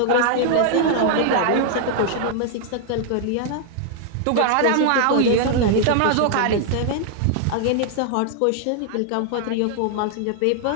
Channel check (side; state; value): both; different; correlation 0.00